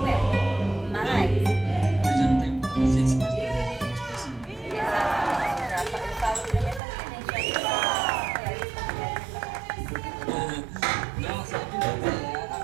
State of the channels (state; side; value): drops out; left; at 6.8 s